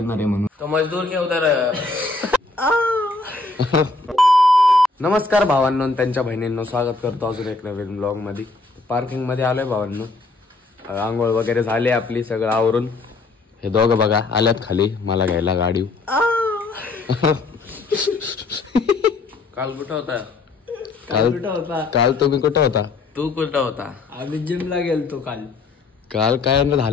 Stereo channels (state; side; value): quieter; right; 3.6 dB